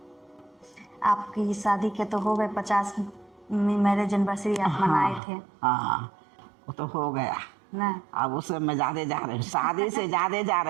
आपकी शादी के तो हो गए 50 मैरिज एनिवर्सरी आप मनाए थे हाँ, वो तो हो गया ना। अब उससे मैं ज़्यादा जा रही हूँ, शादी से ज़्यादा जा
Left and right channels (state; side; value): drops out; left; at 5.2 s